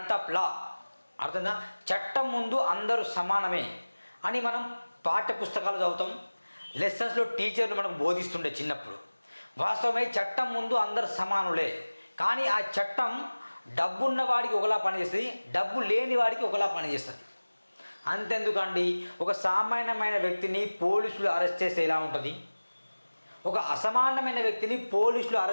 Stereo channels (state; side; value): inverted; both; correlation -1.00